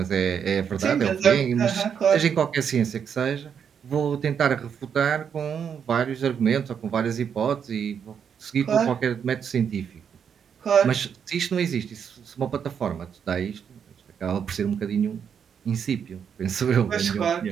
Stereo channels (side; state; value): left; quieter; 7.5 dB